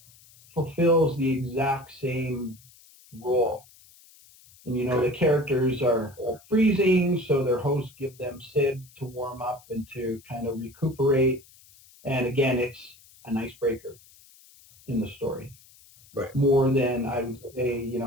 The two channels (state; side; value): noise; left; hiss, 26 dB below the sound